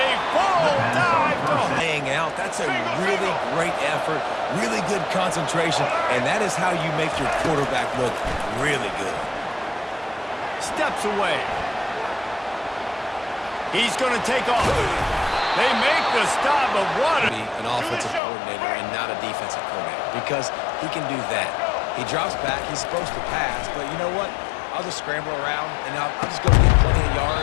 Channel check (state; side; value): drops out; right; at 18.2 s